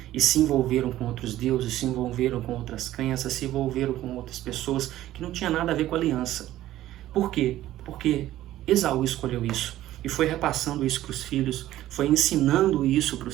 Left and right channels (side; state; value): left; quieter; 14.2 dB